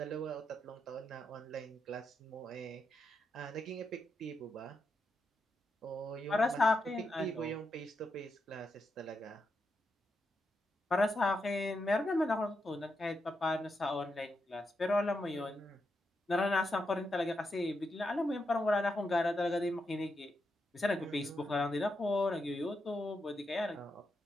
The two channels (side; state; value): both; normal; correlation 0.84